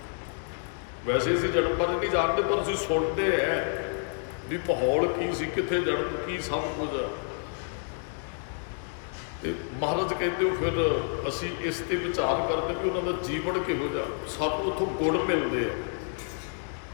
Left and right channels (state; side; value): silent; right; 59 dB below the other